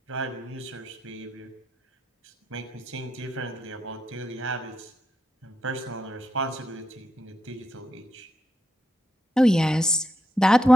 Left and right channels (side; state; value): both; normal; correlation 0.83